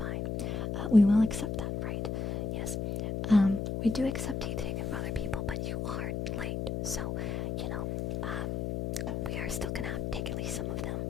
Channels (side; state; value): left; noise; hum, 2 dB below the sound